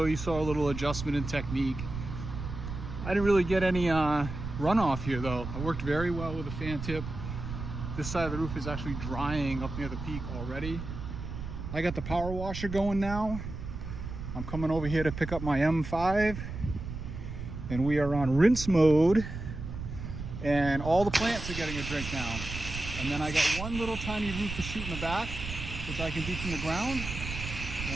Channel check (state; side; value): noise; right; rumble, 7 dB below the sound